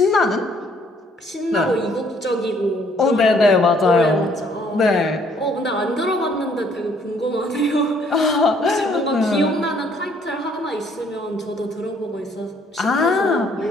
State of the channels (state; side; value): normal; both; correlation 0.64